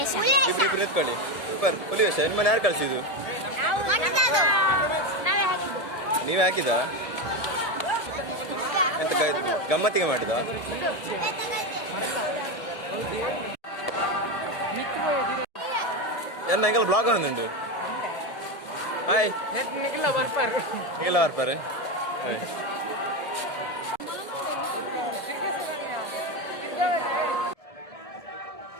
ಇಬ್ರು ಎತ್ಕೊಳ್ಳಿ ಸೂಪರ್ ಹುಲಿ ವಿಷಯ ನಿಮ್ಮನ್ನ ಯಾರು ಕಳ್ಸಿದ್ದು ನೀವೇ ಹಾಕಿದ ಎಂತ ಗಮ್ಮತ್ತಿಗೆ ಮಾಡಿದ ಎಂಗೆಲ್ಲ ಬ್ಲಾಗ್ ಒಂದುಂಟು ಹಾಯ್ ನಿಖಿಲ ಬರ್ಪಾರೆ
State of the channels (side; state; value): right; late; 1.7 ms